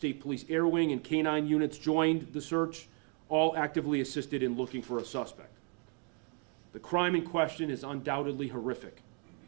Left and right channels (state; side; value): quieter; left; 38.3 dB